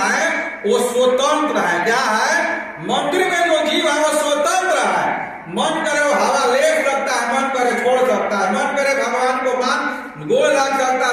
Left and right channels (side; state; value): both; identical; correlation 1.00